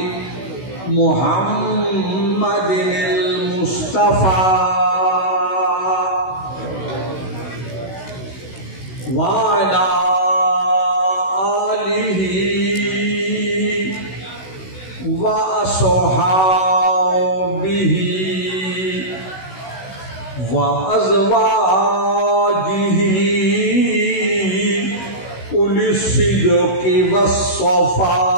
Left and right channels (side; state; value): right; late; 16 ms